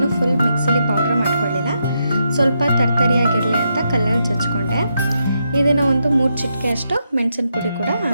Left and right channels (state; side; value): inverted; both; correlation -0.82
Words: ಫುಲ್ ಮಿಕ್ಸಿಲಿ ಪೌಡ್ರ್ ಮಾಡ್ಕೊಳ್ಳಿಲ್ಲ, ಸ್ವಲ್ಪ ತರ್ತರಿಯಾಗಿರಲಿ ಅಂತ ಕಲ್ಲಲ್ಲಿ ಜಜ್ಕೊಂಡೆ. ಇದನ್ನು ಒಂದು 3 ಚಿಟಿಕೆ ಅಷ್ಟು ಮೆಣಸಿನ ಪುಡಿ ಕೂಡ